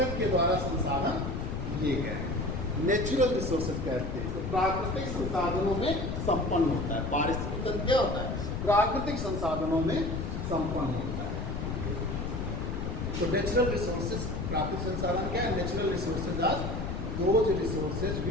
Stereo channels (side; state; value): left; noise; rumble, 3 dB below the sound